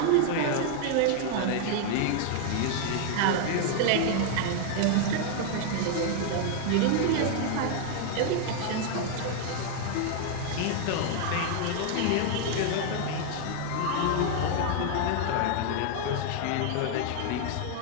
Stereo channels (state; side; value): different; both; correlation 0.00